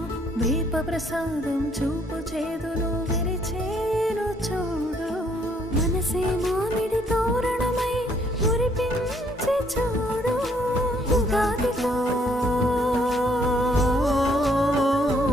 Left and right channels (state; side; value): normal; both; correlation 0.67